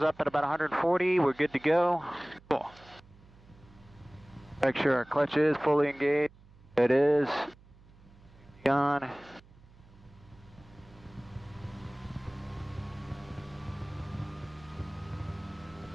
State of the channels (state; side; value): noise; right; hum, 25 dB below the sound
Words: up at about 140, we're good to go. Cool. Make sure our clutch is fully engaged. It is. On.